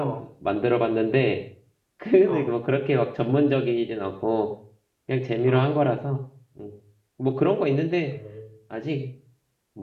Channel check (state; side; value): identical; both; correlation 1.00